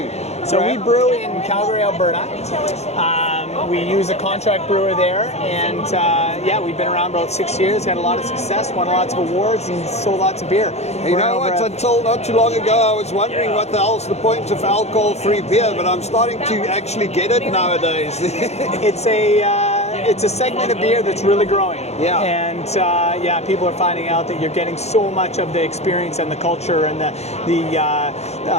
So we brew in Calgary, Alberta. We use a contract brewer there, and we've been around about 6 years, had a lot of success, won lots of awards, and sold lots of beer. You know what, until not too long ago, I was wondering what the hell's the point of alcohol-free beer, but I'm starting to actually get it nowadays. It's a segment of beer that's really growing. Yeah. And people are finding out that you're getting so much of the experience and the culture and the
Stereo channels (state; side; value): late; right; 0.31 ms